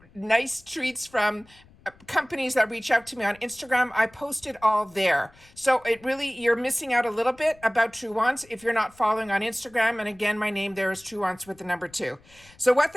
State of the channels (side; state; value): left; noise; rumble, 27 dB below the sound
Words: nice treats from companies that reach out to me on Instagram, I post it all there. So it really, you're missing out a little bit about True Wants if you're not following on Instagram. And again, my name there is True Wants with the number 2. So what